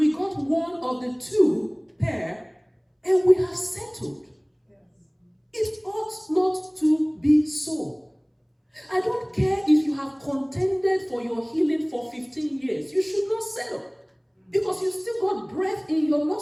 got one of the two pair and we have settled. It ought not to be so. I don't care if you have contended for your healing for 15 years. You should not settle because you still got breath in your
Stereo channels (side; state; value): both; identical; correlation 1.00